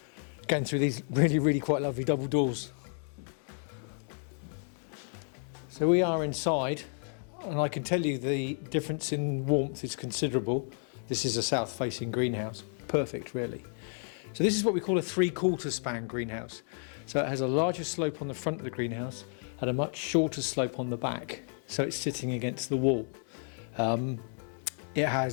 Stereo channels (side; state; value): right; silent; 57 dB below the other